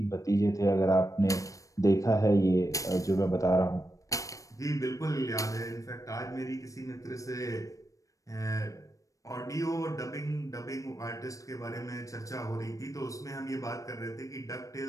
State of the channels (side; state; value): right; late; 0.16 ms